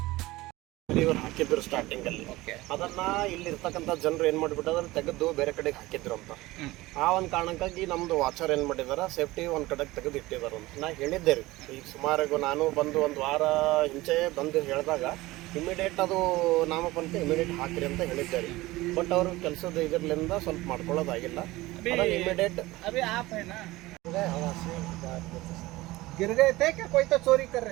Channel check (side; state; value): left; quieter; 19.2 dB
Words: ಇವರು ಹಾಕಿದ್ರು ಸ್ಟಾರ್ಟಿಂಗ್ ಅಲ್ಲಿ, ಅದನ್ನ ಇಲ್ಲಿ ಇರ್ತಕ್ಕಂಥ ಜನರು ಏನ್ ಮಾಡ್ಬಿಟ್ಟದ್ರ ತೆಗೆದು ಬೇರೆ ಕಡೆಗೆ ಹಾಕಿದ್ರು ಅಂತ. ಆ ಒಂದು ಕಾರಣಕ್ಕಾಗಿ ನಮ್ದು ವಾಚರ್ ಏನ್ ಮಾಡಿದಾರ ಸೇಫ್ಟಿ ಒಂದ್ ಕಡೆಗೆ ತೆಗೆದು ಇಟ್ಟಿದಾರ ಅಂತ ನಾ ಹೇಳಿದ್ದೆ ರೀ. ಈಗ ಸುಮಾರು ನಾನು ಬಂದು ಒಂದು ವಾರ ಹಿಂಚೆ ಬಂದು ಹೇಳಿದಾಗ ಇಮಿಡಿಯೇಟ್ ಅದು ನಾಮಫಲಕ ಇಮಿಡಿಯೇಟ್ ಹಾಕ್ರಿ ಅಂತ ಹೇಳಿದ್ದೆ ರೀ. ಬಟ್ ಅವರು ಕೆಲಸದ ಇದರ್ಲಿಂದ ಸ್ವಲ್ಪ ಮಾಡ್ಕೊಳ್ಳೋದಾಗಿಲ್ಲ. ಇಮಿಡಿಯೇಟ್ अभी आप है ना, गिर गए थे क्या? कोई तो चोरी कर